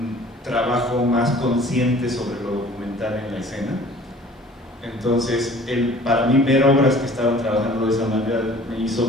trabajo más consciente sobre lo documental en la escena. Entonces, para mí ver obras que estaban trabajando de esa manera me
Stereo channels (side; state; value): both; normal; correlation 0.49